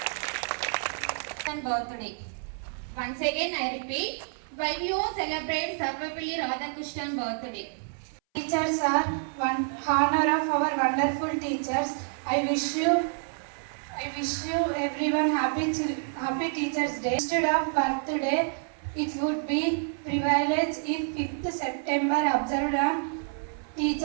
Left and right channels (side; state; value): left; silent; 59 dB below the other